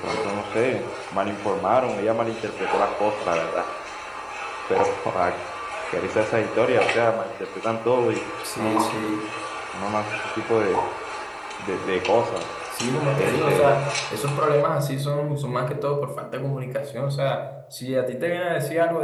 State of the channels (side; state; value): both; identical; correlation 1.00